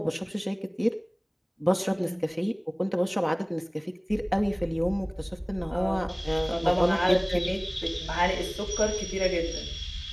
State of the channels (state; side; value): identical; both; correlation 1.00